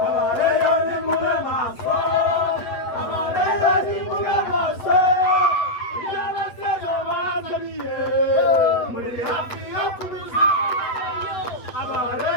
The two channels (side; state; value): right; late; 8.3 ms